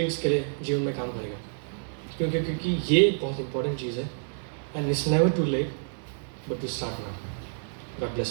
के लिए जीवन में काम करेगा। क्योंकि ये बहुत इंपॉर्टेंट चीज़ है। And it's never too late but to start now. God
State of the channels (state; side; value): silent; left; digital silence